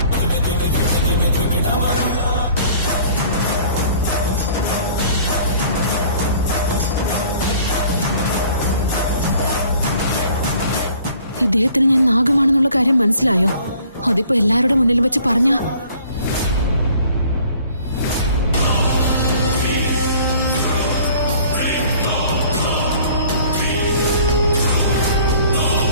ഇദ്ദേഹത്തിന് ഞാൻ നാഗമാണെന്നുള്ള കാര്യം മനസ്സിലായോ? അതിപ്പോ എല്ലാവരുടെ മുന്നിൽ വെച്ച് പറഞ്ഞ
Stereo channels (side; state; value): both; inverted; correlation -0.53